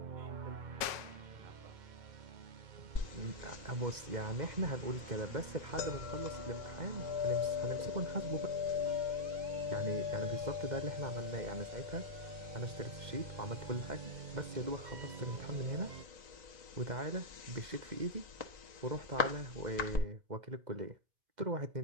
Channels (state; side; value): late; left; 1.9 ms